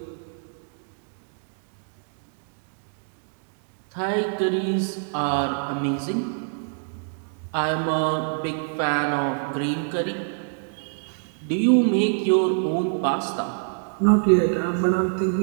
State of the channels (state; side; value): silent; left; digital silence